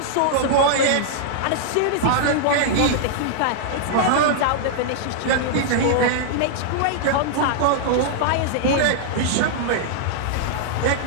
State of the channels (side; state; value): both; different; correlation -0.01